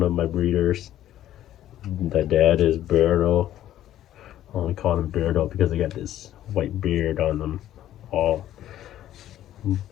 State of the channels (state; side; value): quieter; right; 12.5 dB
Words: of my breeders. The dad is Beardo. I only call him Beardo because they got this white beard on them. All